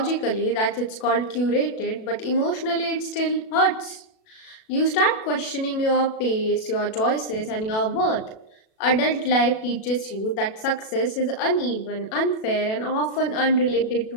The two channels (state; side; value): late; right; 37 ms